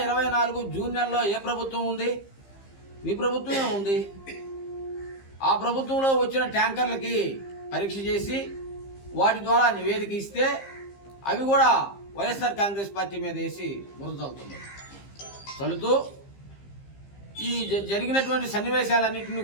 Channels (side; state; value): right; late; 15 ms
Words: జూన్ నెలలో ఏ ప్రభుత్వం ఉంది? మీ ప్రభుత్వమే ఉంది. ఆ ప్రభుత్వంలో వచ్చిన ట్యాంకర్లకి పరీక్ష చేసి వాటి ద్వారా నివేదిక ఇస్తే అవి కూడా వైఎస్ఆర్ కాంగ్రెస్ పార్టీ మీద వేసి బురద చల్లుతూ ఈ జరిగినటువంటి సన్నివేశాలన్నింటినీ